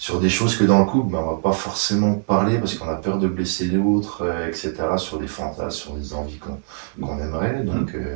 des choses que dans le couple, on ne va pas forcément parler parce qu'on a peur de blesser l'autre, etc., sur des fantasmes, sur des envies qu'on aimerait, donc,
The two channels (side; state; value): left; silent; 61 dB below the other